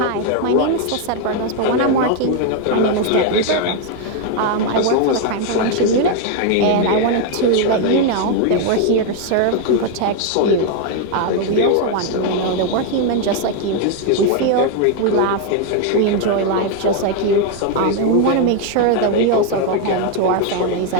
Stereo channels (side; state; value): both; different; correlation 0.01